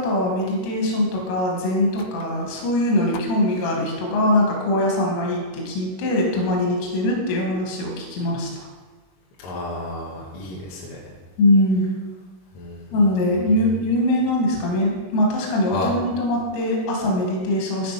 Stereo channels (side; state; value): right; late; 21 ms